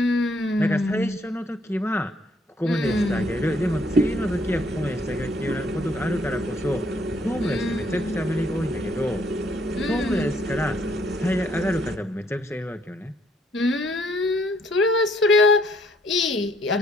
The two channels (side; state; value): both; normal; correlation 0.67